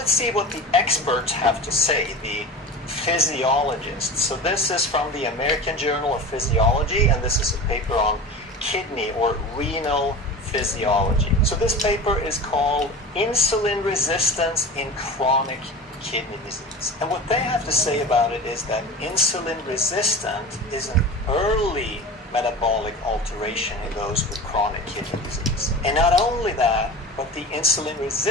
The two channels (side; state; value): both; normal; correlation 0.32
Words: see what the experts have to say, the physiologists. So this is from the American Journal of Physiology, and this is a paper on kidney or renal physiology. So this paper is called Insulin Resistance in Chronic Kidney Disease. And what they have to say about it is that insulin resistant is an early metabolic alteration in those with chronic kidney disease. And not only that, but the insulin